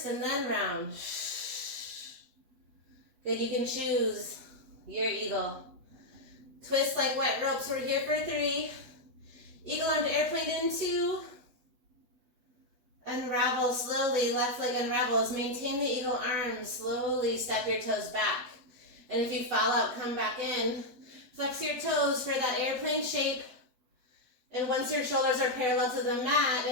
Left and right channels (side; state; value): left; late; 7.9 ms